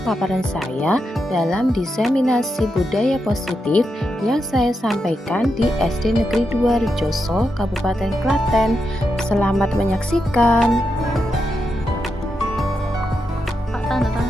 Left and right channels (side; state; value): both; normal; correlation 0.85